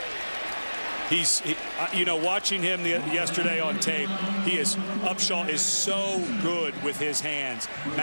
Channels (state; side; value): inverted; both; correlation -1.00